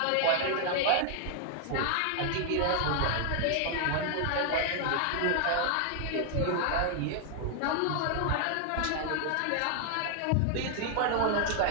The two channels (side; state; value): both; different; correlation 0.00